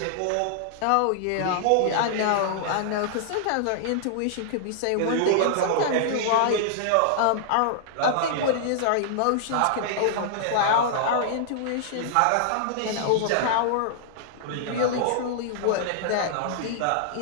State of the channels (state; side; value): different; both; correlation -0.01